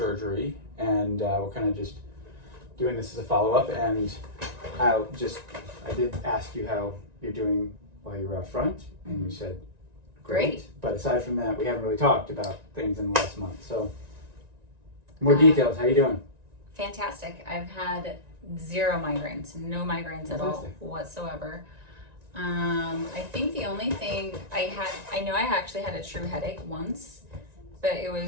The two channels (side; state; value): left; late; 1.9 ms